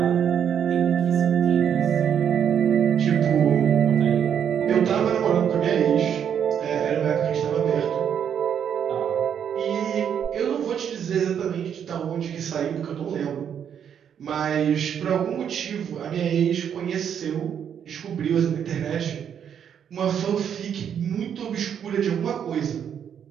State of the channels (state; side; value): quieter; left; 8.4 dB